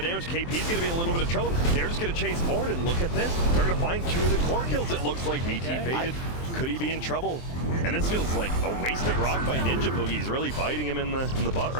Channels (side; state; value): right; late; 23 ms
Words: damage. KP's going to be in a little bit of trouble. They're just going to chase forward, and look at this. They're going to find 2 of the core kills, it looks like. VT faded. Could he be in trouble? And this feels like a wasted rock by Ninja Boogie. He's really biting him in the butt